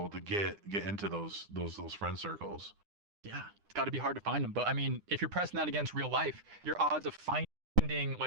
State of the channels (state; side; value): late; left; 9.9 ms